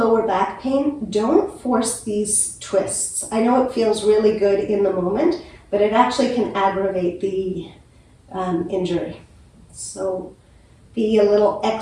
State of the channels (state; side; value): identical; both; correlation 1.00